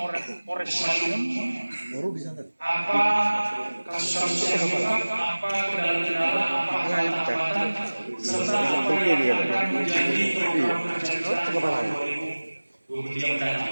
Polres Madiun, apa kasus-kasus yang diungkap, apa kendala-kendala, apa hambatan, serta apa yang akan menjadi program kerja kita tahun 2023 mendatang.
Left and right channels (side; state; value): both; inverted; correlation -1.00